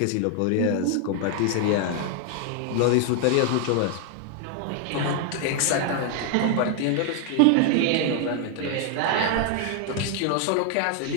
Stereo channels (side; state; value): both; different; correlation 0.00